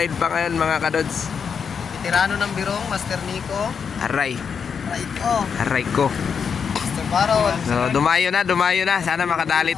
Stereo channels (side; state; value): right; quieter; 6.5 dB